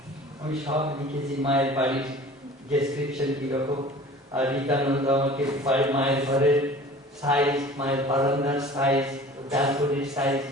আমি সব লিখেছি, মায়ের বাড়ির ডেসক্রিপশন কিরকম। আর রীতানন্দ আমাকে মায়ের ঘরের সাইজ, মায়ের বারান্দার সাইজ, ব্যালকনির সাইজ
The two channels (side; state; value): both; normal; correlation 0.44